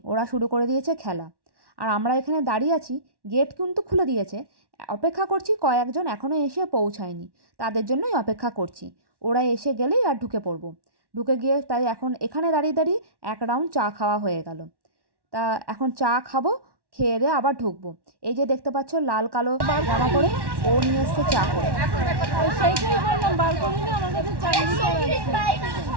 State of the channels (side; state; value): left; late; 1.1 ms